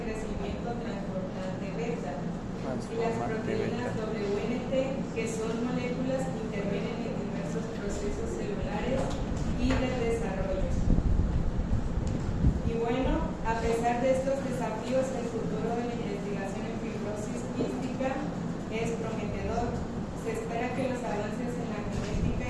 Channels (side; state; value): both; identical; correlation 1.00